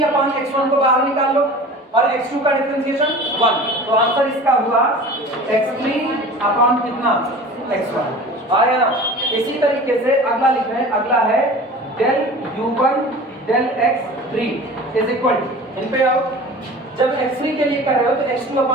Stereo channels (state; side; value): normal; both; correlation 0.39